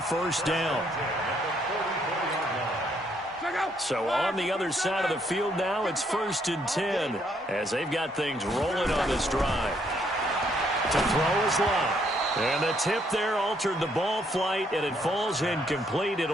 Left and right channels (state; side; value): normal; both; correlation 0.70